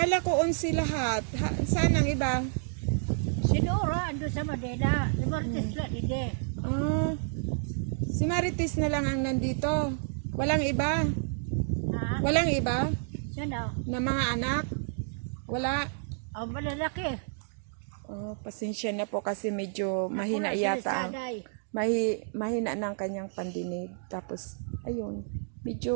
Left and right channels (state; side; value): silent; left; digital silence